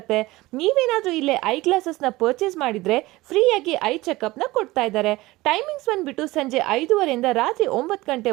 ನೀವೇನಾದ್ರೂ ಇಲ್ಲೇ ಐ ಗ್ಲಾಸಸ್ ನ ಪರ್ಚೇಸ್ ಮಾಡಿದ್ರೆ ಫ್ರೀಯಾಗಿ ಐ ಚೆಕಪ್ ನ ಕೊಡ್ತಾ ಇದ್ದಾರೆ. ಟೈಮಿಂಗ್ಸ್ ಬಂದ್ಬಿಟ್ಟು ಸಂಜೆ 5:30 ಇಂದ ರಾತ್ರಿ 9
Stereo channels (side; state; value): left; quieter; 19.4 dB